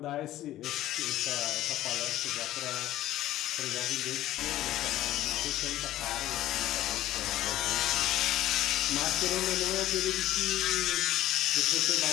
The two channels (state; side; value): quieter; right; 14.2 dB